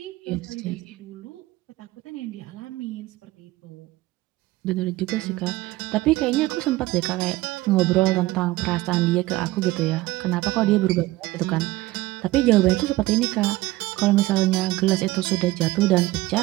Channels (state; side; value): quieter; left; 18.4 dB